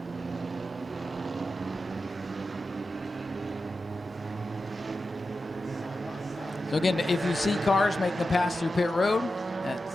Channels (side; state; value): both; normal; correlation 0.91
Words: So again, if you see cars making the pass through pit road, that's